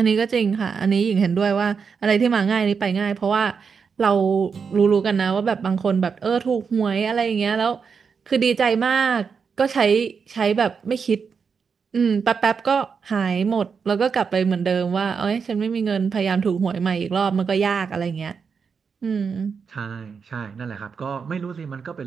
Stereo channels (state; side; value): quieter; left; 5.9 dB